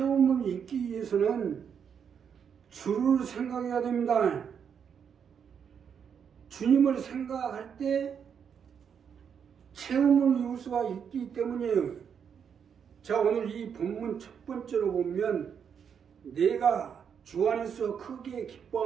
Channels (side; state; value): left; quieter; 7.4 dB